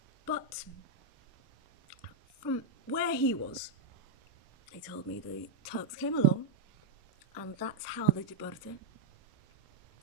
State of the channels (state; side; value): quieter; left; 4.0 dB